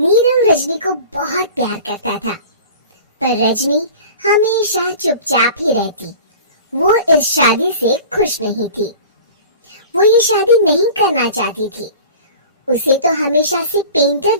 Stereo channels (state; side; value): inverted; both; correlation -0.40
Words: रजनी को बहुत प्यार करता था, पर रजनी हमेशा चुपचाप ही रहती। वो इस शादी से खुश नहीं थी। वो ये शादी नहीं करना चाहती थी। उसे तो हमेशा से पेंटर